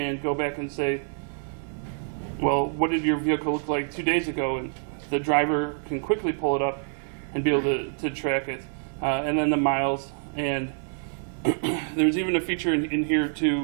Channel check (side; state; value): left; silent; 60 dB below the other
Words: go back and say, well, what did your vehicle look like 2 days ago? And the driver can quickly pull it up and be able to track it. And then the miles. And there's even a feature in here